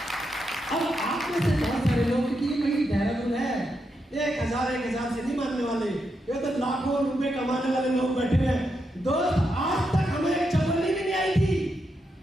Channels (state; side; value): normal; both; correlation 0.83